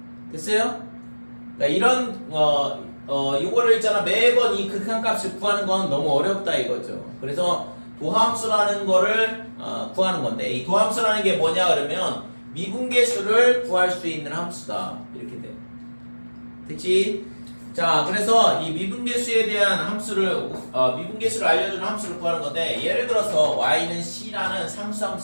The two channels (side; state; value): both; inverted; correlation -1.00